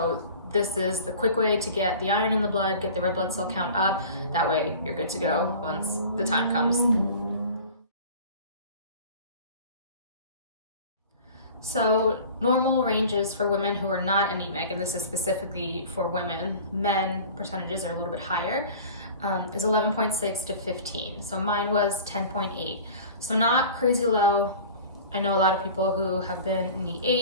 this is the quick way to get the iron in the blood, get the red blood cell count up. That way you're good to go once the time comes. So normal ranges for women who are not anemic, and this is specifically for women, men percentages are a little bit higher, is 11.6 to 15. So mine was 10.8. So not crazy low. I know a lot of people who have been in the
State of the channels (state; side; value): inverted; both; correlation -0.41